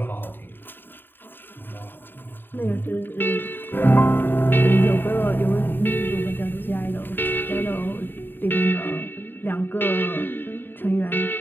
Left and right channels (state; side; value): late; right; 0.096 ms